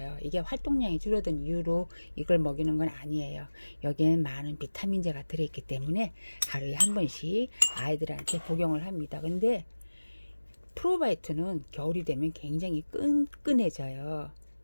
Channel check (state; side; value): inverted; both; correlation -1.00